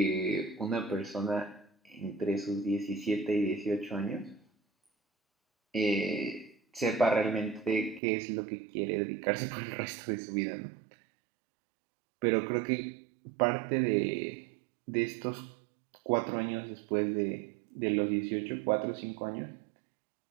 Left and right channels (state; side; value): drops out; left; at 8.0 s